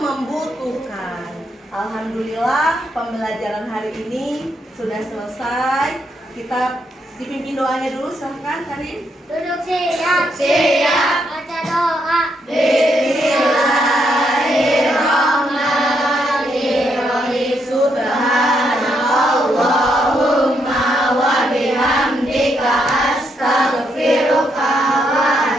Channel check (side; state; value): both; normal; correlation 0.77